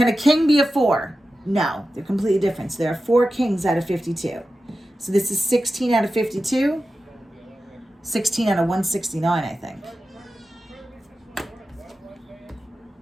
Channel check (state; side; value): normal; both; correlation 0.93